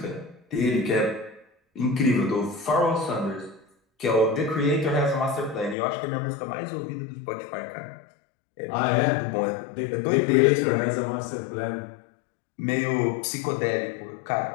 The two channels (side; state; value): right; drops out; at 5.8 s